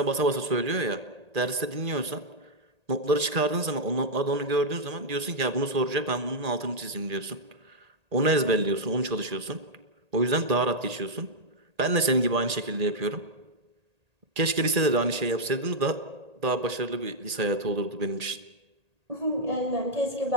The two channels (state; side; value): late; left; 1.8 ms